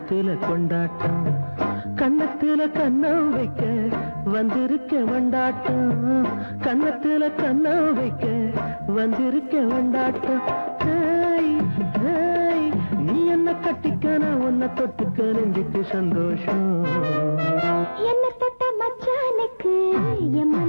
கொண்டாட்டம் கன்னத்துல கண்ணம் வைக்க வந்திருக்க வண்டாட்டம் கன்னத்துல கண்ணம் வைக்க வந்திருக்க வண்டாட்டம் ஹேய், ஹேய், நீ என்ன கட்டிக்க நான் உன்னை தொட்டுக்க நெஞ்சுக்கு சந்தோஷம் என்ன தொட்ட மச்சானுக்கு என்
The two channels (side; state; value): both; inverted; correlation -1.00